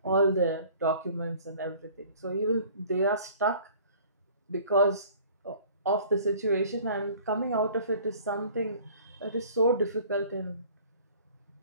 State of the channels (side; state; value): both; inverted; correlation -0.49